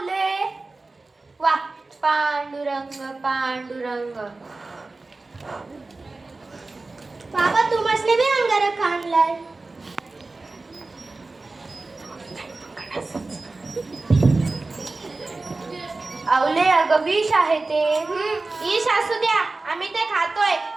वा, पांडुरंग पांडुरंग. बाबा, तू मसले बी अंगारक आणलाय. आवले अगं विष आहे ते. ईश असू द्या, आम्ही ते खातोय.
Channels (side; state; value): left; quieter; 3.4 dB